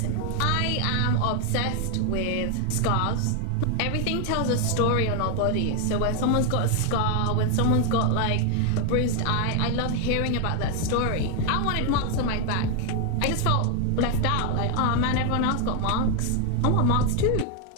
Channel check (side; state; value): both; different; correlation 0.00